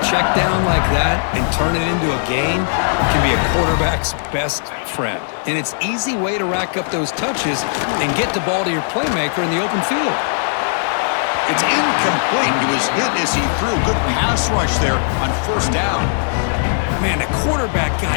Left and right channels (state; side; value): silent; right; digital silence